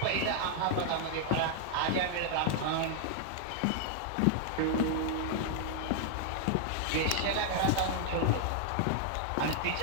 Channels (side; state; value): both; different; correlation 0.00